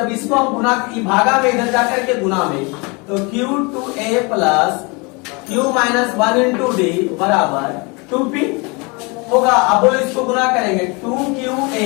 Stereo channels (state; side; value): quieter; right; 29.0 dB